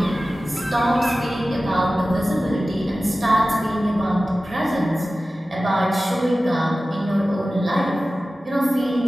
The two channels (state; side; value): normal; both; correlation 0.96